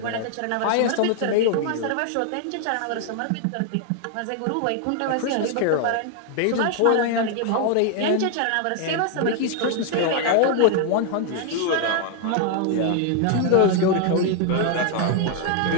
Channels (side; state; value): both; different; correlation 0.00